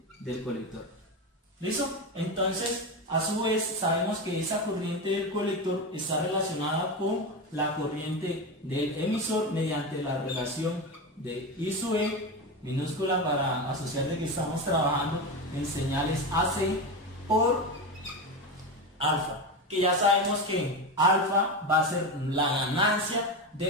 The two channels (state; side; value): normal; both; correlation 0.18